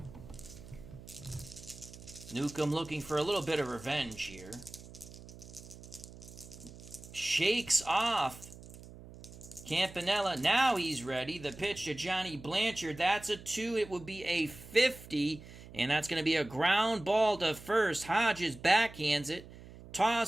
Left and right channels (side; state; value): right; noise; hum, 17 dB below the sound